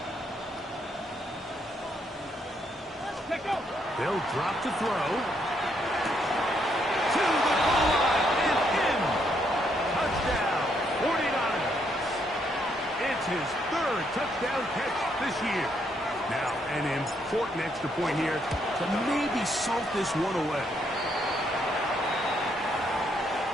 They'll drop to throw. To the goal line and in. Touchdown, 49ers. It's his third touchdown catch this year. Now, an important extra point here to maybe salt this one away.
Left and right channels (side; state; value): both; normal; correlation 0.74